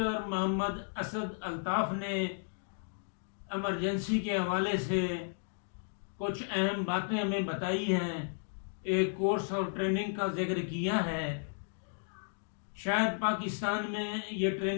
मोहम्मद असद अल्ताफ़ ने इमरजेंसी के हवाले से कुछ अहम बातें हमें बताई हैं, एक कोर्स और ट्रेनिंग का जिक्र किया है। शायद पाकिस्तान में ये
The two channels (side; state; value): right; silent; digital silence